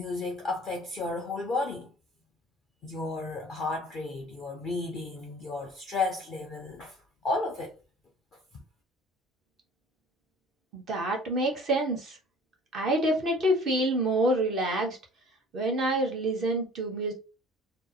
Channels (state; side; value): normal; both; correlation 0.47